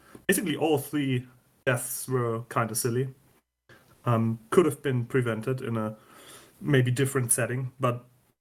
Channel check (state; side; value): identical; both; correlation 1.00